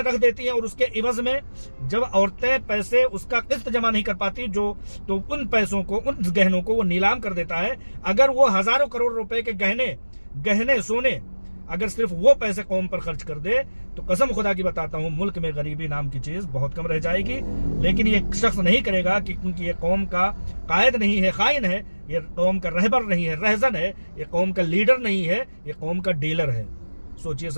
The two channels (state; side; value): inverted; both; correlation -1.00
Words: रख देती हैं, और उसके इवज में जब औरतें पैसे उसका किस्त जमा नहीं कर पाती, तो उन पैसों को, उन गहनों को वो नीलाम कर देता है। अगर वो हजारों करोड़ रुपए के गहने सोने, अगर सिर्फ वो पैसे कौम पर खर्च कर दे, तो कसम खुदा की बताता हूं, मुल्क में गरीबी नाम की चीज बहुत कम रह जाएगी। लेकिन ये शख्स नहीं करेगा, क्योंकि ये कौम का कायद नहीं है, खाइन है, ये कौम का रहबर नहीं है, रहजन है, ये कौम का लीडर नहीं है, ये कौम का डीलर है। सोचिए,